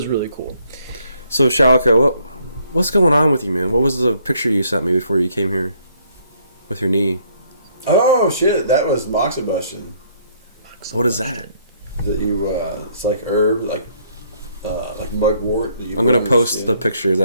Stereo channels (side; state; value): both; inverted; correlation -0.67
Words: really cool. So Shalako, what's going on with you, man? What was the picture you sent me before you came here with your knee? Oh shit! That was moxibustion. What is that? That you it's like herb, like mugwort. That you I'm gonna put on your post skin. the picture. Is